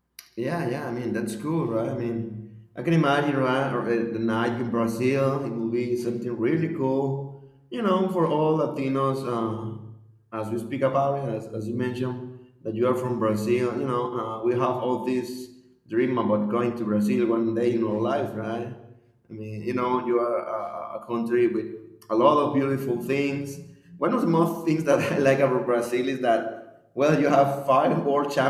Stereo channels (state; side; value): identical; both; correlation 1.00